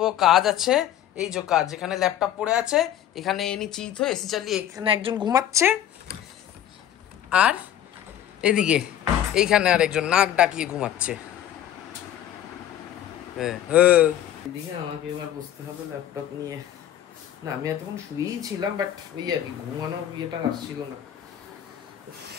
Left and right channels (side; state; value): right; quieter; 11.2 dB